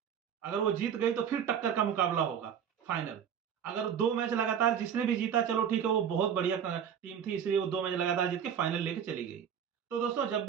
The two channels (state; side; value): quieter; left; 8.3 dB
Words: अगर वो जीत गई तो फिर टक्कर का मुकाबला होगा फाइनल। अगर 2 मैच लगातार जिसने भी जीता, चलो ठीक है वो बहुत बढ़िया टीम थी इसलिए वो 2 मैच लगातार जीत के फाइनल लेके चली गई। तो दोस्तों जब